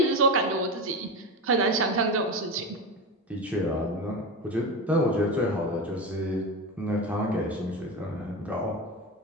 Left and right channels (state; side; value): normal; both; correlation 0.22